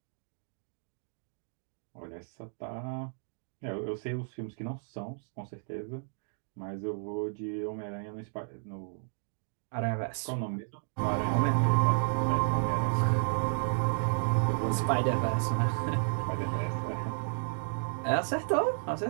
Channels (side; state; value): left; silent; digital silence